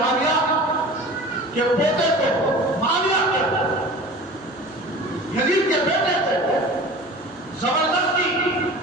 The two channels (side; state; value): both; normal; correlation 0.38